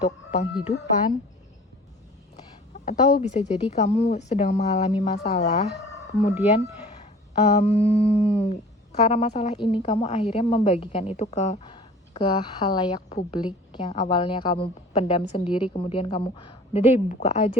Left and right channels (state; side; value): normal; both; correlation 0.46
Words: penghidupan. Atau bisa jadi kamu sedang mengalami masalah, kemudian karena masalah ini kamu akhirnya membagikan itu ke halayak publik yang awalnya kamu pendam sendiri, kemudian kamu udah deh buka